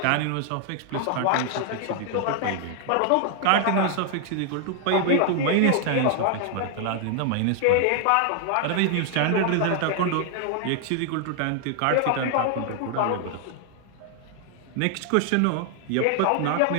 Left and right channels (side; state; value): both; different; correlation 0.00